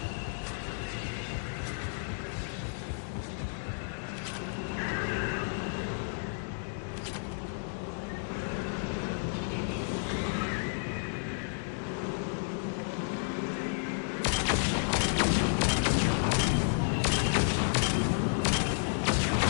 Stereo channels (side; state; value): right; silent; digital silence